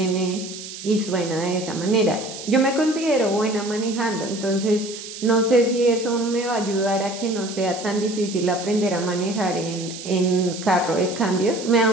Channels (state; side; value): noise; right; hiss, 12 dB below the sound